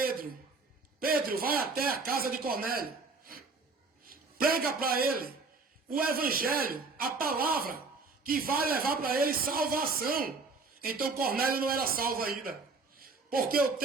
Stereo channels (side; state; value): left; quieter; 4.1 dB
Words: Pedro, vai até a casa de Cornélio, prega para ele o evangelho, a palavra que vai levar para ele salvação. Então Cornélio não era salvo ainda, porque o